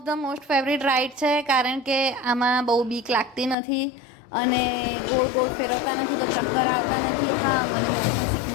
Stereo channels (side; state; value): right; drops out; at 3.6 s